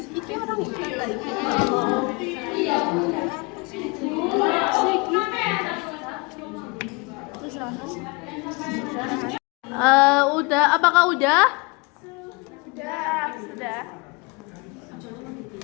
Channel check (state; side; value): quieter; right; 27.9 dB